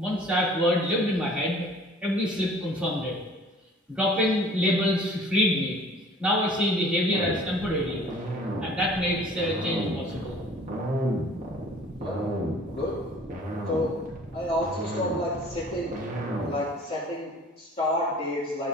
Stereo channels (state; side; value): normal; both; correlation 0.50